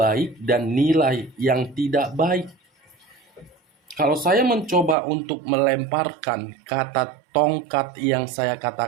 dan nilai yang tidak baik. Kalau saya mencoba untuk melemparkan kata tongkat yang saya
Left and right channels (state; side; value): drops out; left; at 5.0 s